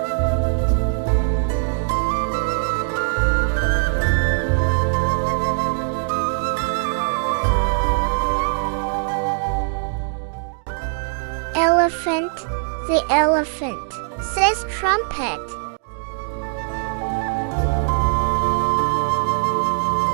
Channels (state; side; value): silent; left; digital silence